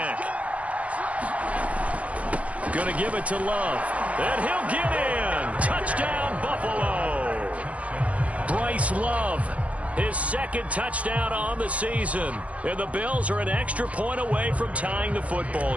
Going to give it to Love. And he'll get in. Touchdown, Buffalo. Bryce Love, his 2nd touchdown on the season. And the Bills are an extra point away from tying the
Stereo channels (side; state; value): left; late; 0.065 ms